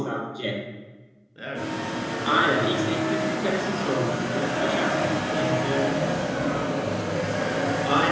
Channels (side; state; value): both; identical; correlation 1.00